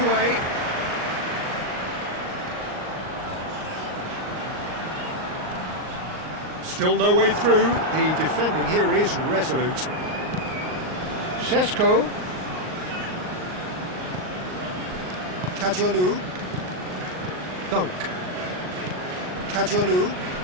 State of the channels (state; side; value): late; left; 38 ms